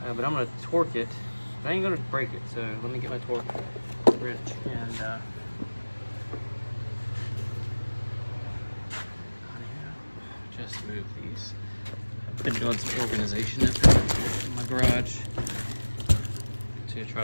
But I'm gonna torque it. I ain't gonna break it, so let me get my torque wrench and just move these. I've been doing some organization in my garage to try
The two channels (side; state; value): both; inverted; correlation -1.00